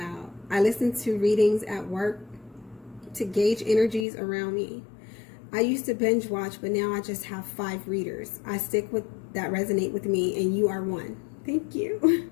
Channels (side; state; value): right; drops out; at 4.0 s